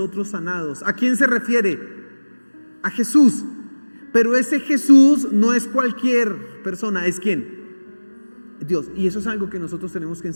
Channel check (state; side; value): inverted; both; correlation -1.00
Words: sanados. ¿A quién se refiere? A Jesús. Pero ese Jesús no es cualquier persona, ¿es quién? Dios. Y eso es algo que nosotros tenemos que